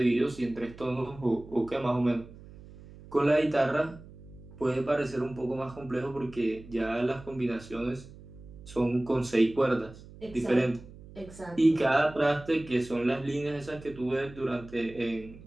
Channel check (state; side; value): noise; right; hum, 18 dB below the sound